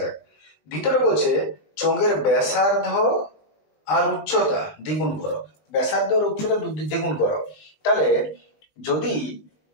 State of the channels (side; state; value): right; late; 20 ms